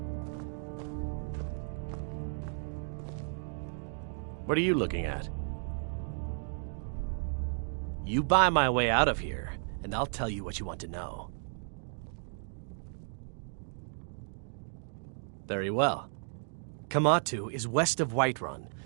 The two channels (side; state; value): left; silent; 55 dB below the other